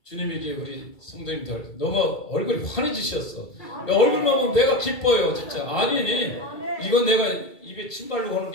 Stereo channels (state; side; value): late; right; 2.3 ms